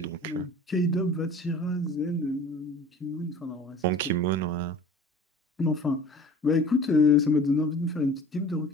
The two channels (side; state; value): both; normal; correlation 0.43